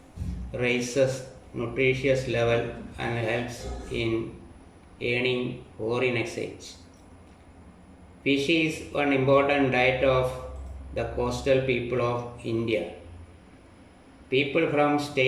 raises nutritious level and helps in earning foreign exchange. Fish is one important diet of the coastal people of India. People from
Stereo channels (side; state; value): both; identical; correlation 1.00